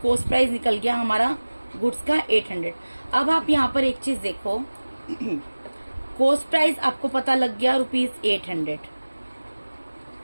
प्राइस निकल गया हमारा गुड्स का 800। अब आप यहाँ पर एक चीज देखो, कॉस्ट प्राइस आपको पता लग गया ₹800,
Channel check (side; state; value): both; inverted; correlation -1.00